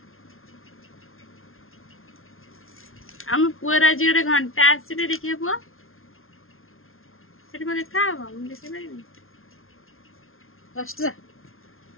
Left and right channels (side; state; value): right; late; 0.61 ms